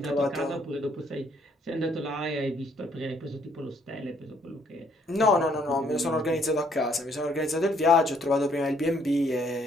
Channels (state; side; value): normal; both; correlation 0.66